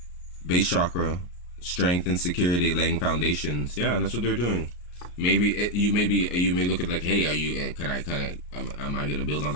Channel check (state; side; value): late; right; 34 ms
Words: Base chakra, strength and security, laying foundations. Yeah, that's what they're doing. Maybe you may look at like, hey, are you am I gonna build on